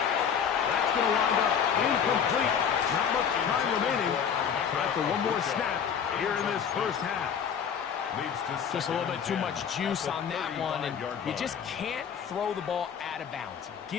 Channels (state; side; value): quieter; right; 7.6 dB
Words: That's going to wind up incomplete. Not much time remaining. Time for one more snap here in this first half. Just a little bit too much juice on that one, and you just can't throw the ball out of bounds.